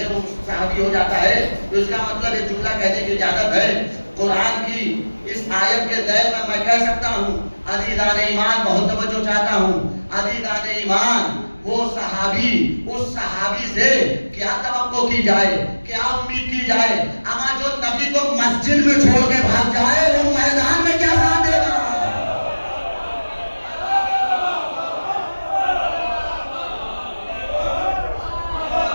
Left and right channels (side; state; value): both; inverted; correlation -1.00